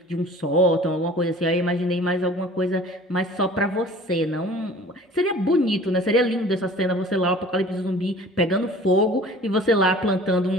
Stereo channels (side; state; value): both; normal; correlation 0.46